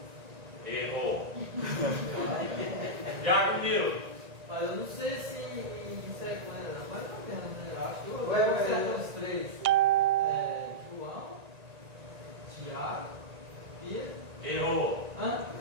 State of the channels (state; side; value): late; left; 1.9 ms